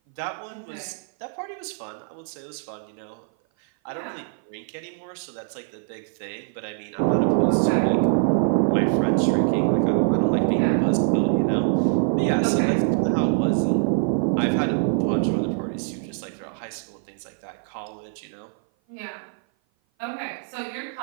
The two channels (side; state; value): left; silent; 57 dB below the other